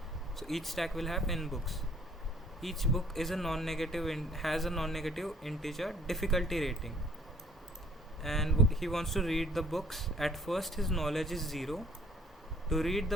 So each stack will have n books. Each book is a non-negative has a non-negative integer difficulty rating. And he wants to read the books. At first his knowledge is 0. To read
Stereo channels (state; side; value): normal; both; correlation 0.58